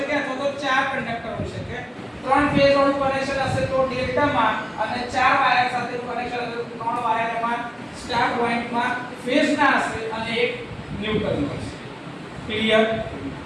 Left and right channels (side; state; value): both; identical; correlation 1.00